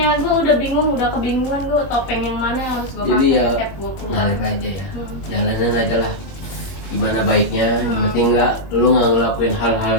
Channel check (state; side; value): late; right; 21 ms